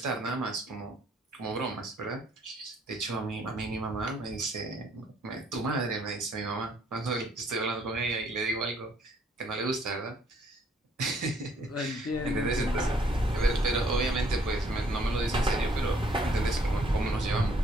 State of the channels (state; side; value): normal; both; correlation 0.64